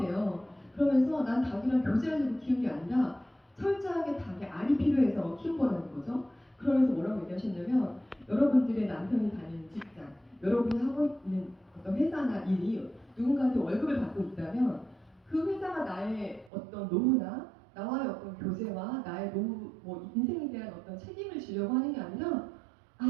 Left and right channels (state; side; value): drops out; left; at 16.5 s